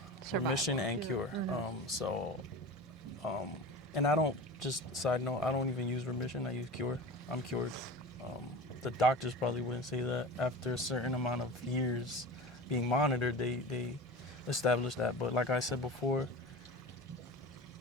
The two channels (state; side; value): normal; both; correlation 0.33